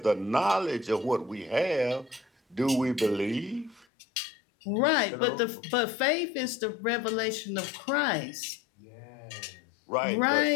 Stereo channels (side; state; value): right; drops out; at 3.9 s